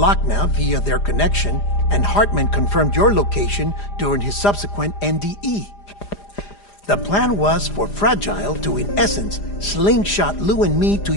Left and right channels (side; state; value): right; late; 4.9 ms